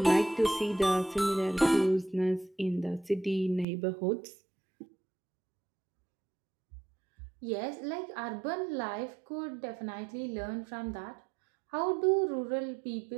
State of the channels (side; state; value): left; drops out; at 3.7 s